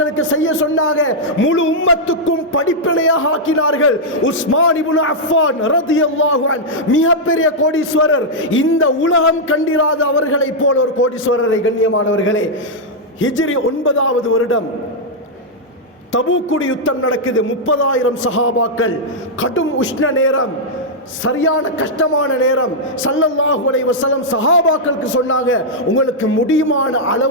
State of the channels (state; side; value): normal; both; correlation -0.05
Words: செய்ய சொன்னாங்க, முழு உம்மத்துக்கும் படிப்பினையாக ஆக்கினார்கள். உஸ்மான் இப்னு அஃபான் ரலியல்லாஹு அன்ஹு மிகப்பெரிய கோடீஸ்வரர், இந்த உலகம் கண்டிராத அவர்களை போல ஒரு கோடீஸ்வரரை. கண்ணியமானவர்களே, ஹிஜ்ரி 9வது வருடம் தபூக்குடி யுத்தம் நடக்குது. 30,000 சஹாபாக்கள், கடும் உஷ்ண நேரம், சரியான கஷ்டமான நேரம். ஸல்லல்லாஹு அலைஹி வஸல்லம் சஹாபாக்களுக்கு சொன்னாங்க, உங்களுக்கு முடியுமான